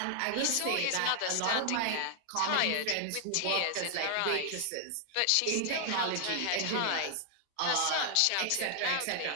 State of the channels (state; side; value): different; both; correlation 0.00